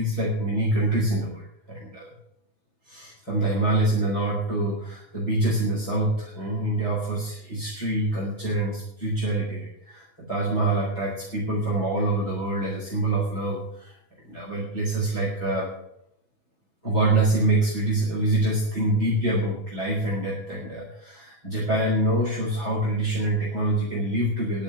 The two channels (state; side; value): late; right; 6.1 ms